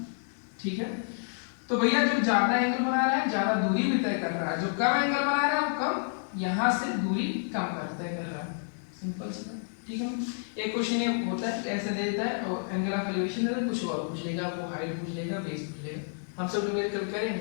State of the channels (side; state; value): right; silent; digital silence